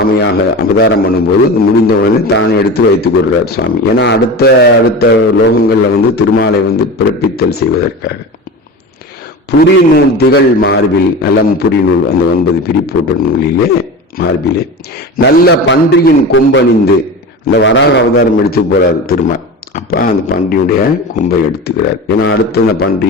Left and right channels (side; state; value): both; normal; correlation 0.29